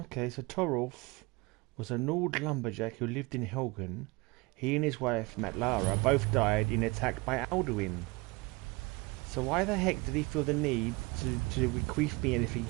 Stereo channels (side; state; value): left; quieter; 25.2 dB